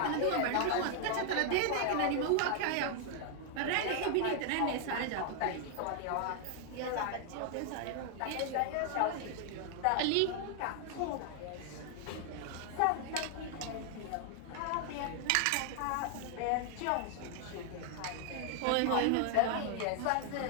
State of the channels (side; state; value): both; different; correlation 0.00